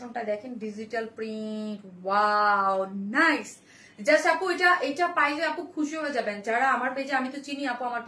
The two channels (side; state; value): both; identical; correlation 1.00